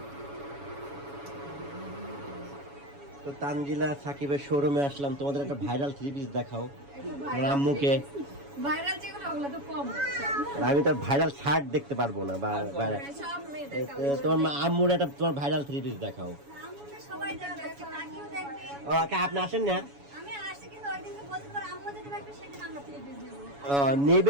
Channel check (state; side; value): late; left; 7.1 ms